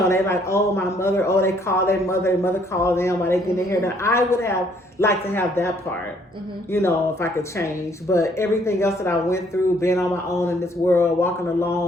"Oh, my mother," they call their mother call them while they get their hair done. I would have liked to have that part, if I could change. But everything else that I went through, being on my own in this world, walking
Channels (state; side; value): normal; both; correlation 0.65